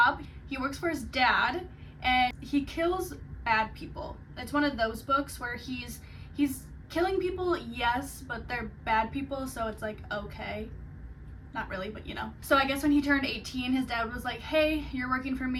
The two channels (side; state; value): both; identical; correlation 1.00